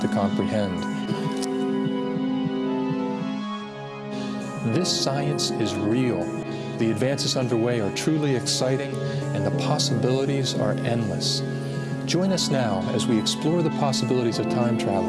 comprehend. This science is real. The advances underway are truly exciting and the possibilities are endless. Join us now as we explore the possibilities of time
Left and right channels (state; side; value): identical; both; correlation 1.00